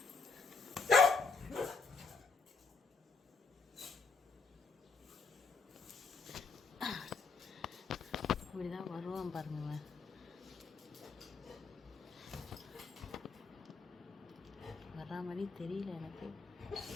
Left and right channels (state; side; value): quieter; right; 4.4 dB